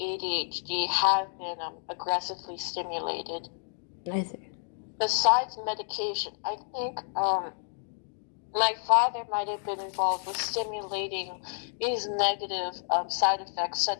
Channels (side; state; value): right; silent; 58 dB below the other